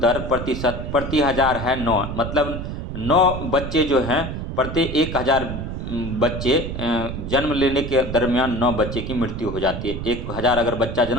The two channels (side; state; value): right; noise; rumble, 6 dB below the sound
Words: प्रतिशत प्रति हजार है 9। मतलब 9 बच्चे जो हैं प्रति 1000 बच्चे जन्म लेने के दरमियान 9 बच्चे की मृत्यु हो जाती है। 1000 अगर बच्चा